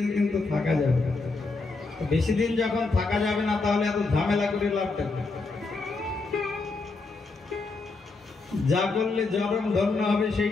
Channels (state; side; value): quieter; right; 3.8 dB